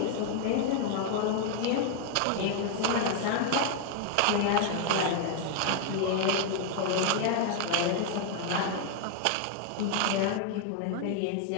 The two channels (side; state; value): both; different; correlation 0.00